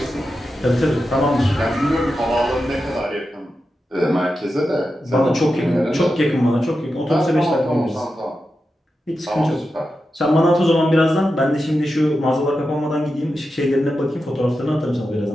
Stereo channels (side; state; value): both; normal; correlation 0.90